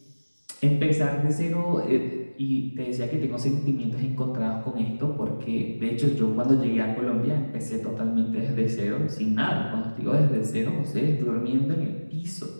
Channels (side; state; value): both; inverted; correlation -1.00